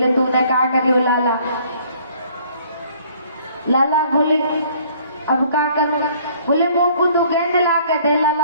तूने क्या करी लाला? लाला बोले अब क्या करूं? बोले मोकू तू गेंद ला के दे।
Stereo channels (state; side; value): inverted; both; correlation -0.57